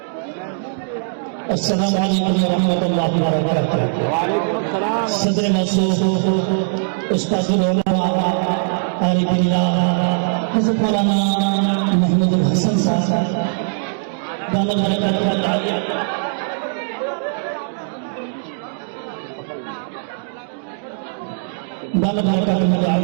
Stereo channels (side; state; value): left; silent; digital silence